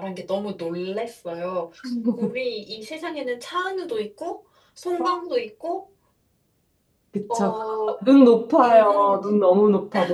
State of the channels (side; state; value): both; identical; correlation 1.00